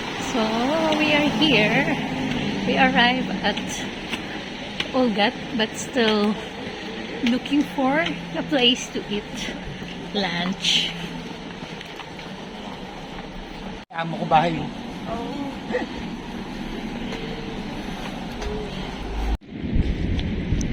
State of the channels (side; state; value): both; identical; correlation 1.00